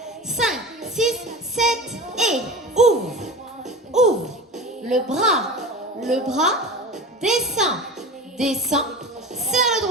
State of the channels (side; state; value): both; normal; correlation 0.32